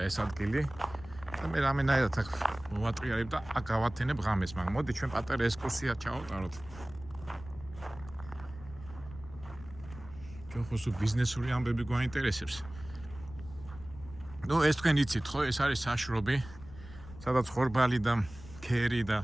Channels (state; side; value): noise; left; rumble, 17 dB below the sound